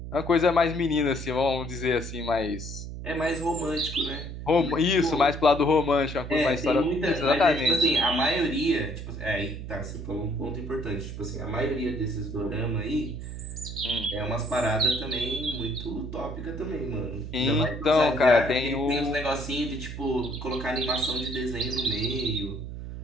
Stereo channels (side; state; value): right; noise; hum, 8 dB below the sound